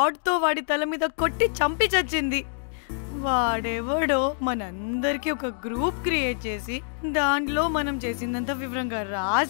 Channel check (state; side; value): silent; right; digital silence